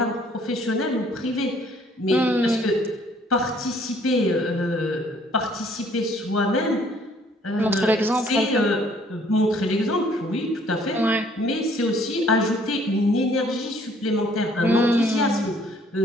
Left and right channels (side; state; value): both; normal; correlation 0.61